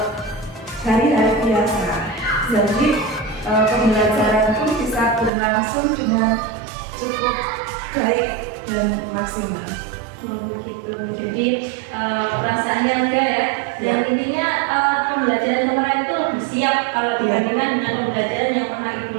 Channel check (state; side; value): drops out; left; at 5.3 s